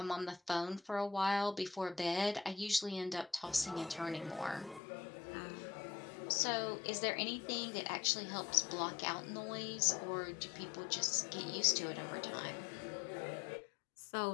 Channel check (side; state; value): right; drops out; at 4.8 s